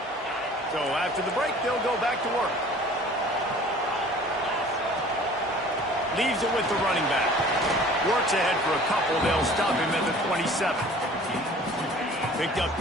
So after the break, they'll go back to work. Leaves it with the running back. Works ahead for a couple. They'll stop him at the 27. Picked up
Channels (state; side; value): normal; both; correlation 0.48